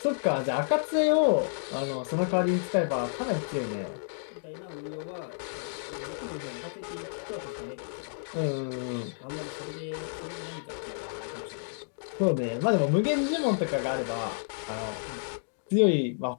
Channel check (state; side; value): silent; right; digital silence